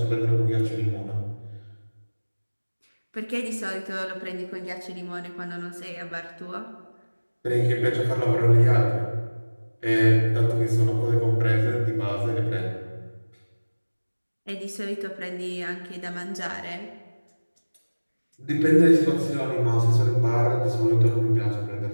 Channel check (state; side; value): inverted; both; correlation -1.00